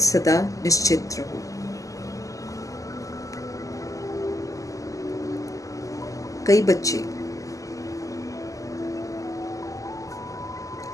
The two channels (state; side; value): late; right; 0.16 ms